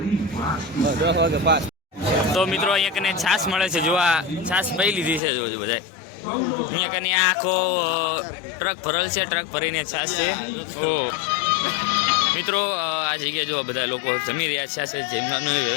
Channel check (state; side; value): drops out; right; at 5.2 s